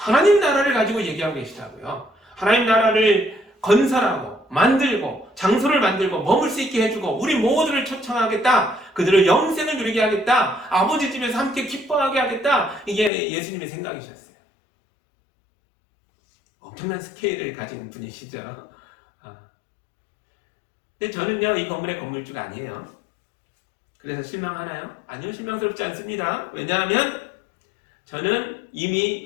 나라를 가지고 얘기하고 계시다고요. 하나님 나라를 건설하고 만들고 장소를 만들고 머물 수 있게 해주고 우리 모두를 초청하겠다. 그들을 영생을 누리게 하겠다. 아버지 집에서 함께 기뻐하게 하겠다. 이게 예수님의 생각이셨어요. 엄청난 스케일을 가진 분이시죠. 근데 저는요, 이 건물의 건물주가 아니에요. 그래서 실망하나요? 아니요, 실망스럽지 않습니다. 왜냐하면 저는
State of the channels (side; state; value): right; drops out; at 13.1 s